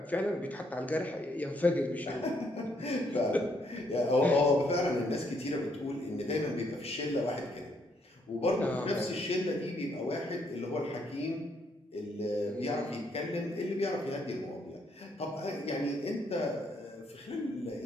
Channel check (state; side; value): normal; both; correlation 0.72